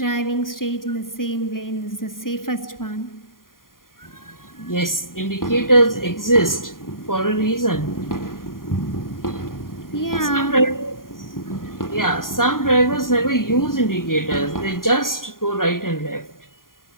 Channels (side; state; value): right; late; 0.91 ms